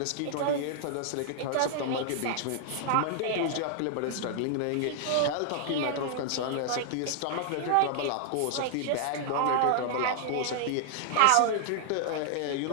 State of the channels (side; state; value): both; different; correlation 0.00